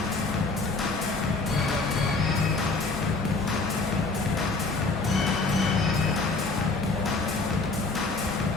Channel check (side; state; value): right; quieter; 3.6 dB